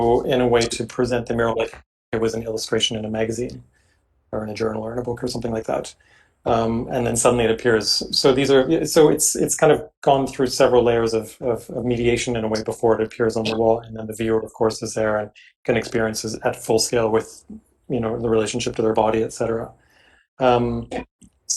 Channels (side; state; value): both; identical; correlation 1.00